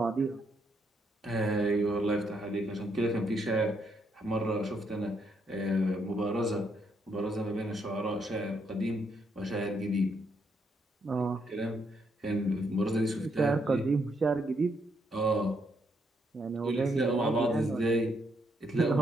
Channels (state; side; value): normal; both; correlation 0.75